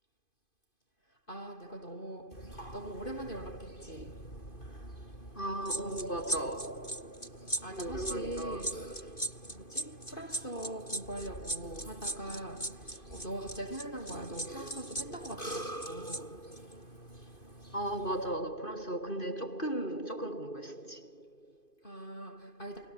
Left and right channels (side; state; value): right; late; 2.5 ms